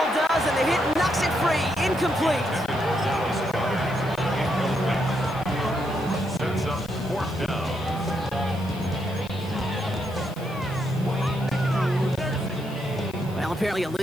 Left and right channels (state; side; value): noise; left; hiss, 22 dB below the sound